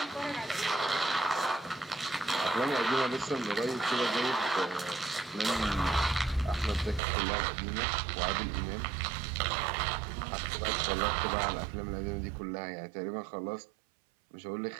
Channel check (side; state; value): left; drops out; at 7.0 s